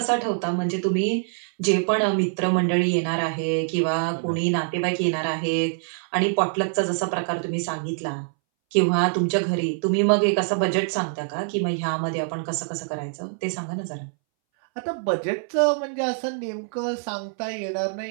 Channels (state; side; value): silent; left; 62 dB below the other